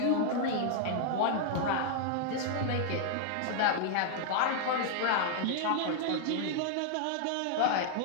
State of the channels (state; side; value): different; both; correlation 0.00